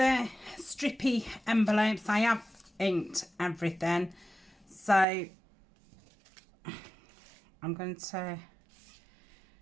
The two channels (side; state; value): left; drops out; at 5.1 s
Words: strippy envelopes. I have inked everything, so I'm going to